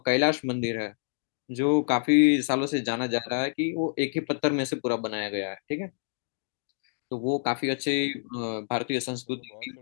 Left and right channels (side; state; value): right; silent; digital silence